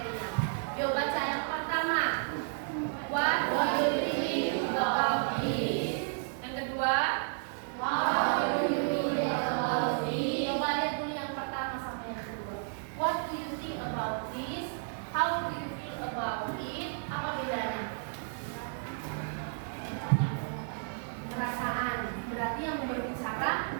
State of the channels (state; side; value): silent; left; digital silence